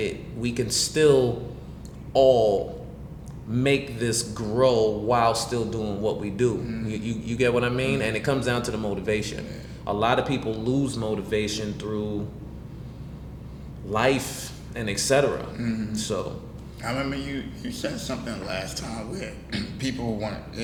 we can still all make this grow while still doing what we do. You get what I mean? And it comes down to the motivation. A lot of people lose motivation through life and etc. So I remember you said something last time where people want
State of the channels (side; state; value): both; identical; correlation 1.00